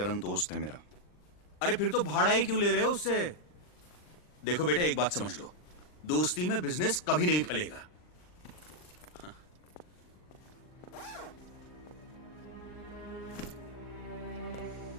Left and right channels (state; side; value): late; right; 39 ms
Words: दोस्त है मेरा. अरे फिर तो भाड़ा ही क्यों ले रहे हो उससे? देखो बेटा, एक बात समझ लो, दोस्ती में बिजनेस कभी नहीं फलेगा.